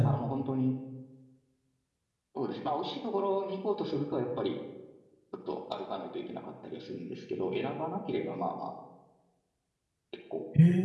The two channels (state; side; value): identical; both; correlation 1.00